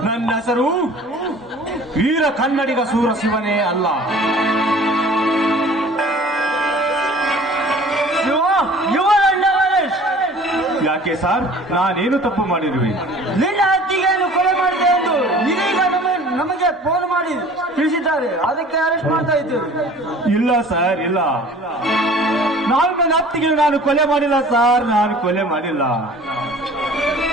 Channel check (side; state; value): both; normal; correlation 0.47